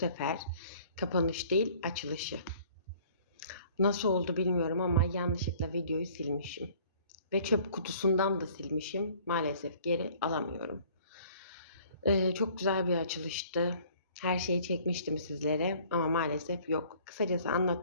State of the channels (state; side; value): inverted; both; correlation -0.54